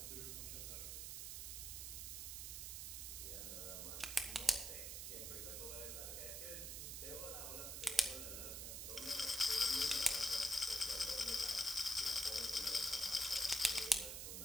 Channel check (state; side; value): noise; right; hiss, 5 dB below the sound